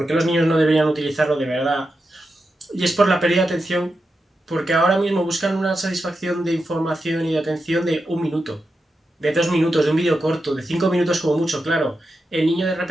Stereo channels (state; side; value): normal; both; correlation 0.88